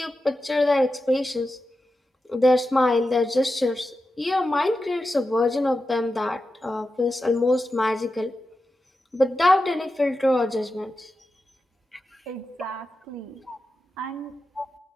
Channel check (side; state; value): both; normal; correlation 0.91